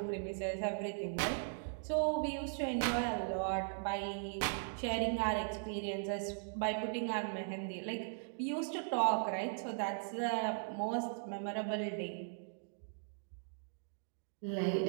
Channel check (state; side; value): silent; left; digital silence